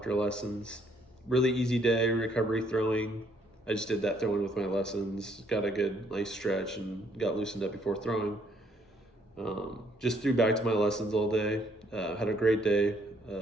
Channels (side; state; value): both; normal; correlation 0.68